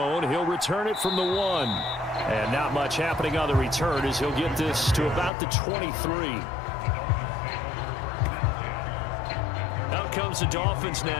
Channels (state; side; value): drops out; right; at 5.3 s